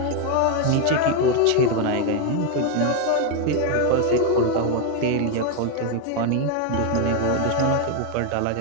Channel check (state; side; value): different; both; correlation 0.01